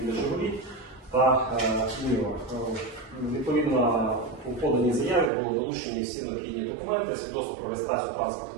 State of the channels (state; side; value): drops out; left; at 5.3 s